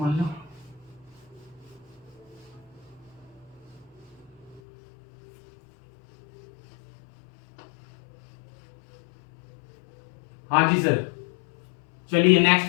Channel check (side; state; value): right; drops out; at 4.6 s